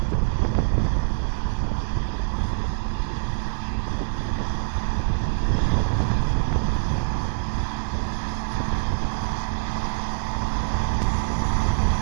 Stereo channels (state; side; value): silent; left; digital silence